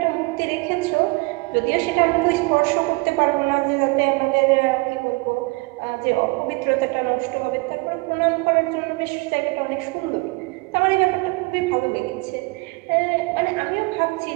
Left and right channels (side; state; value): left; quieter; 26.9 dB